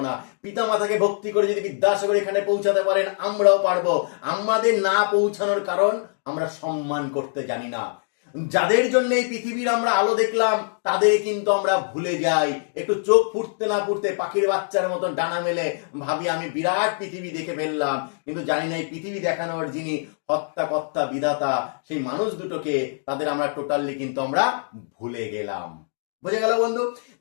না? পিতা মাতাকে ভক্তি করে যদি বিদ্যাসাগর এখানে পৌঁছাতে পারেন, আমরাও পারবো। আমাদের না পৌঁছানোর কারণ আমরা সম্মান করতে জানি না। যাদের জন্য এই পৃথিবীর আমরা আলো দেখলাম, তাদের কিন্তু আমরা ভুলে যাই। একটু চোখ ফুটতে না ফুটতে পাখির বাচ্চার মতন ডানা মেলে ভাবি আমি বিরাট পৃথিবী দেখে ফেললাম, কিন্তু জানি না এই পৃথিবী দেখানোর যিনি হত্যা কর্তা বিধাতা, সেই মানুষ দুটোকে, তাদের আমরা টোটালি কিন্তু আমরা ভুলে গেলাম। বুঝে গেল বন্ধু?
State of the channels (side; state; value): right; silent; digital silence